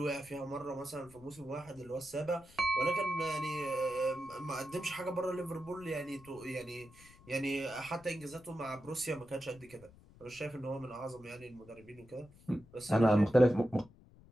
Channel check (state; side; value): noise; left; rumble, 23 dB below the sound